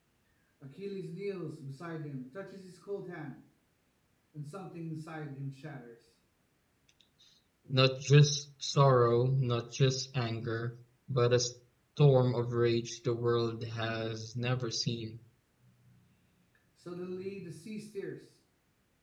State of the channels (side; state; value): both; identical; correlation 1.00